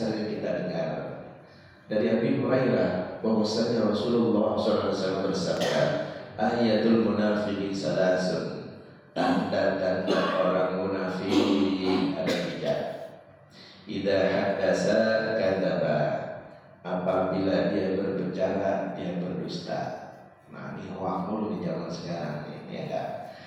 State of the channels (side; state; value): both; identical; correlation 1.00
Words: kita dengar dari Abi Hurairah bahwasanya Rasulullah SAW bersabda, ayatul munafiqi salasun, tanda-tanda orang munafik ada 3. Idza hadasa kadzaba, apabila dia berbicara dia berdusta. Nah, ini hoax mulu di zaman sekarang ini, ya kan?